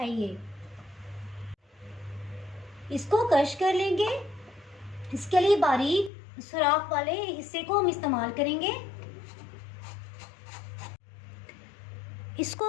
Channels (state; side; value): drops out; right; at 6.1 s